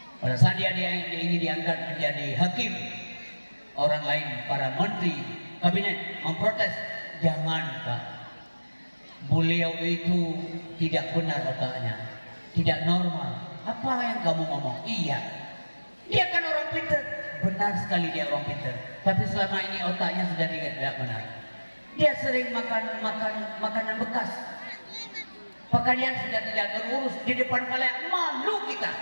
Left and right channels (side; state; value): both; inverted; correlation -1.00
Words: Pada saat dia ingin diangkat menjadi hakim, orang lain, para menteri, kabinet memprotes, jangan Pak. Beliau itu tidak benar otaknya, tidak normal. Apa yang kamu ngomong? Iya, dia kan orang pintar. Benar sekali dia orang pintar. Tapi selama ini otaknya sudah tidak benar. Dia sering makan makanan bekas. Pakaian sudah tidak terurus di depan kalian, malu kita,